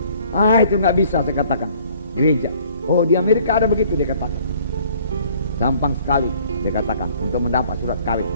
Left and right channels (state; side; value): inverted; both; correlation -0.57